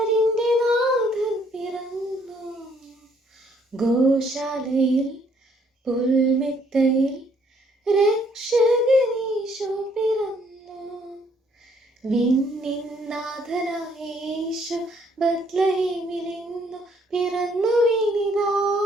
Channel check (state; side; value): normal; both; correlation 0.66